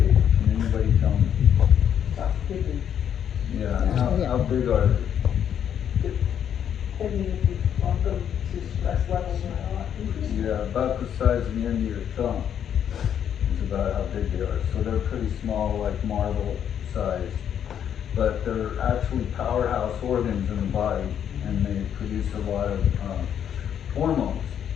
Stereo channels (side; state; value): right; quieter; 9.0 dB